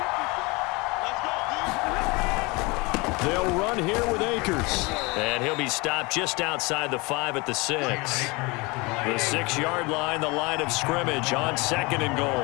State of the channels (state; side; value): quieter; right; 25.9 dB